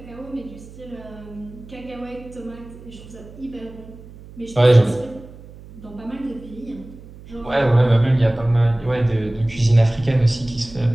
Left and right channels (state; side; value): noise; right; hum, 18 dB below the sound